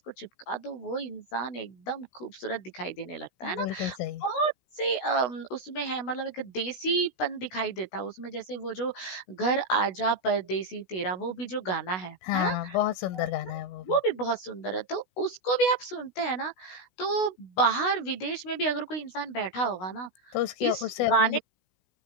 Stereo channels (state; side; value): late; right; 16 ms